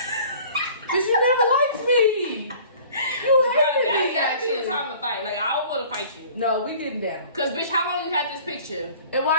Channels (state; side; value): inverted; both; correlation -0.48